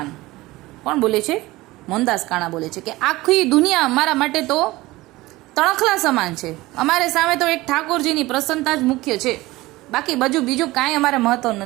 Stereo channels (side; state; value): left; quieter; 19.4 dB